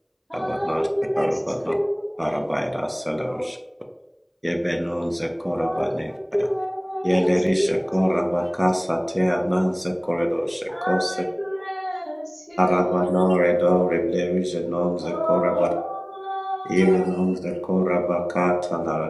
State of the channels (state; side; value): identical; both; correlation 1.00